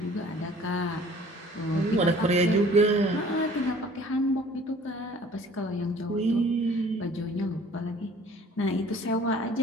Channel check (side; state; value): both; normal; correlation 0.52